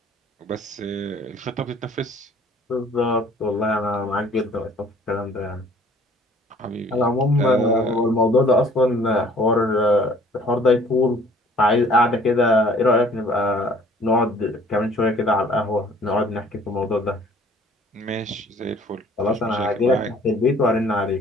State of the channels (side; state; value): both; normal; correlation 0.55